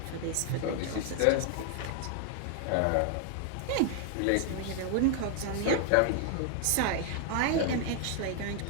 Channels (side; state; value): both; different; correlation 0.00